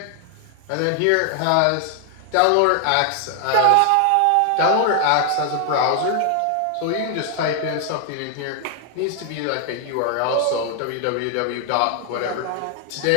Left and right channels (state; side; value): different; both; correlation 0.00